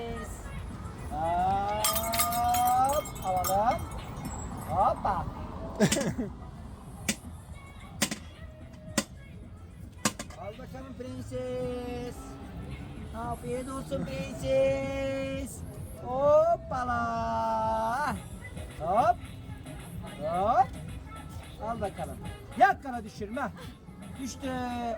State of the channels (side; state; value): both; identical; correlation 1.00